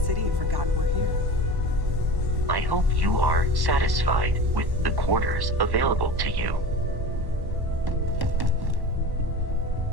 have forgotten we're here. I hope you are satisfied with the quarters available to you.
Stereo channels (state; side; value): late; left; 1.1 ms